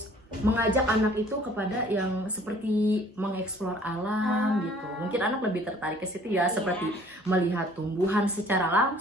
mengajak anak itu kepada yang seperti mengeksplor alam gitu. Mungkin anak lebih tertarik ke situ ya, Iya. seperti melihat tumbuhan secara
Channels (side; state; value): both; normal; correlation 0.54